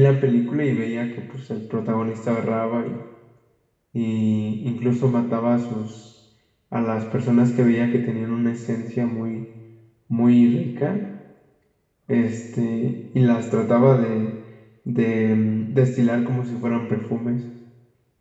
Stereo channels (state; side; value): identical; both; correlation 1.00